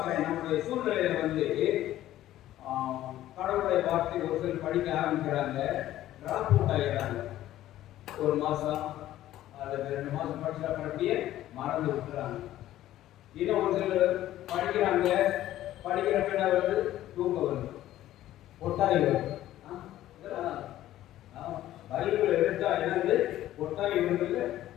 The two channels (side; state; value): right; quieter; 13.7 dB